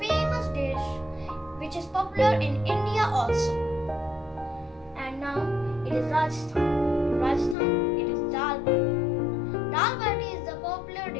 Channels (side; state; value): right; drops out; at 7.6 s